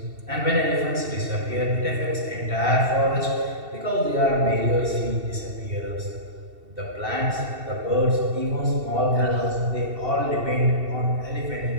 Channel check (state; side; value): late; left; 2.7 ms